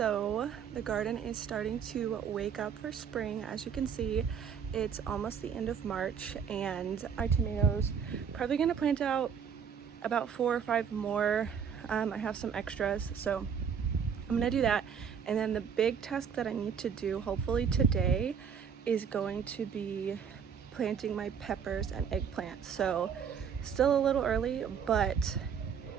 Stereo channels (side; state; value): left; quieter; 7.2 dB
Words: the garden is starting to wake up for spring. As you can see, it's almost the end of March and our tomatoes probably gonna plant out about 4 or 5 more. I have some extras, so I'm gonna do that. And then the big task that I need to do, hopefully today, is going to be planting my peppers and eggplants. So still a little early, but